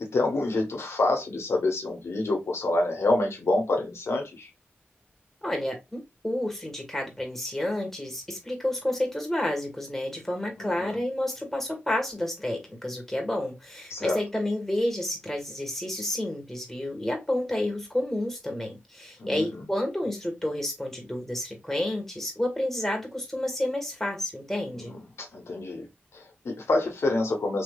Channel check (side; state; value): both; normal; correlation 0.88